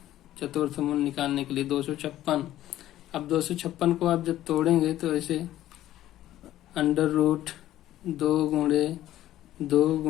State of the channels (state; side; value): quieter; right; 13.6 dB